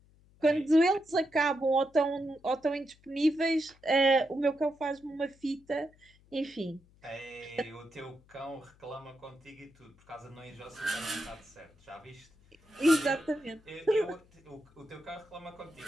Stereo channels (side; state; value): left; noise; hum, 29 dB below the sound